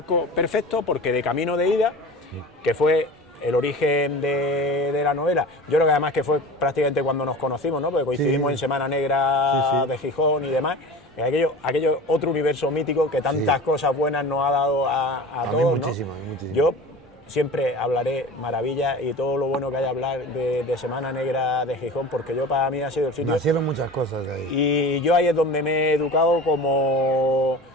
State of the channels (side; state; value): both; normal; correlation 0.36